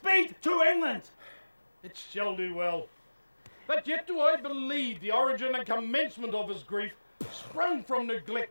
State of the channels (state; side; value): inverted; both; correlation -1.00